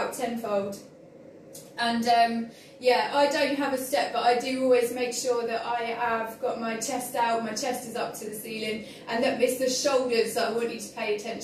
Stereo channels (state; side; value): identical; both; correlation 1.00